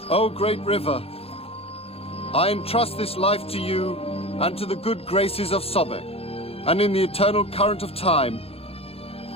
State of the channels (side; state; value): right; late; 0.28 ms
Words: O great river, I entrust this life to you and to the good graces of Sobek, and in the eternal current of time,